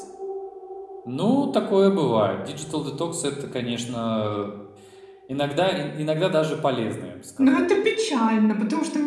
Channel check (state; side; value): identical; both; correlation 1.00